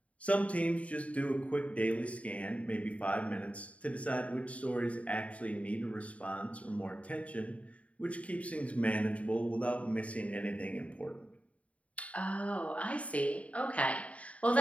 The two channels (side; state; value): right; late; 0.066 ms